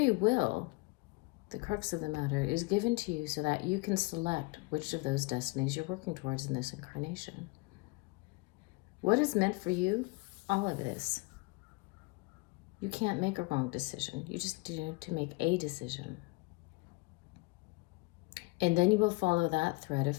will, the crux of the matter, is given to you so that you can select which of those destinies you're working towards in this incarnation. What is meant for you? All of it is. You can't make a wrong decision. You just need to make a decision. And then you will follow that thread of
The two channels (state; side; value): quieter; right; 26.2 dB